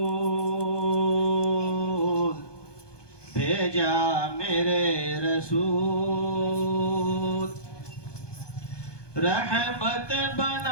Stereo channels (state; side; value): late; right; 1.2 ms